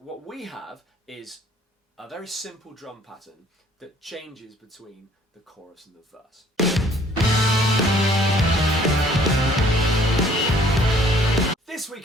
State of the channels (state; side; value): normal; both; correlation 0.58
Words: we have is a very simple drum pattern that changes between the chorus and the verse. This